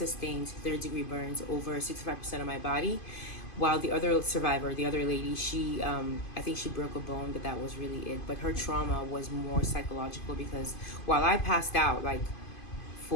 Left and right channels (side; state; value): right; late; 2.5 ms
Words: third-degree burns over 65% of my body, while the other survivor, the other lady, she I think she broke a bone, but that was really it. But her trauma was more psychological because while I passed out, like